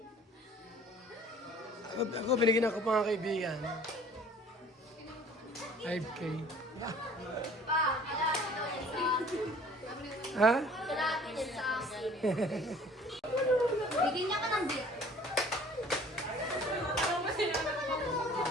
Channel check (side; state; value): both; normal; correlation 0.51